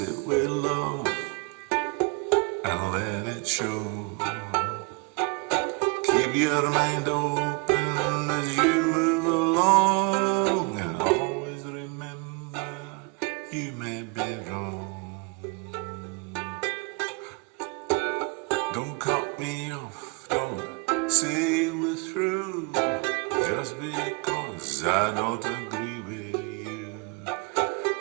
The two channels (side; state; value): left; quieter; 31.6 dB